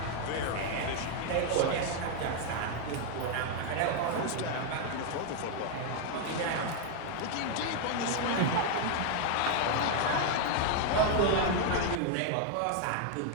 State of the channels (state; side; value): different; both; correlation 0.00